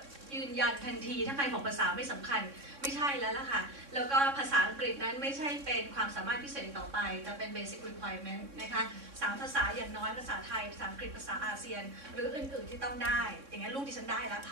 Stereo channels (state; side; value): late; left; 3.6 ms